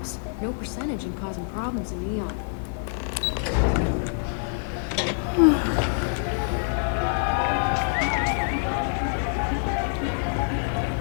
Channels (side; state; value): right; silent; 61 dB below the other